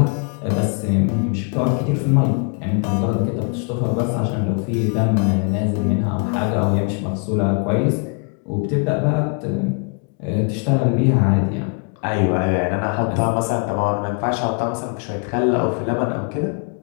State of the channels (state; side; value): quieter; right; 37.4 dB